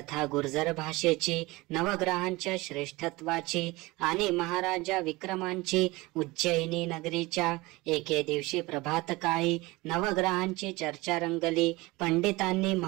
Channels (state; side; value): quieter; left; 21.6 dB